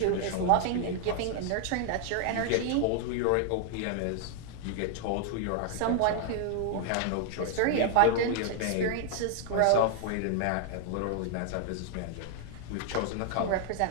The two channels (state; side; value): different; both; correlation 0.00